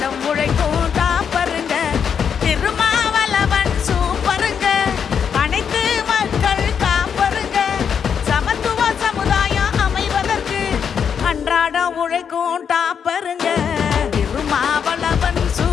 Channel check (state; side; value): quieter; right; 7.3 dB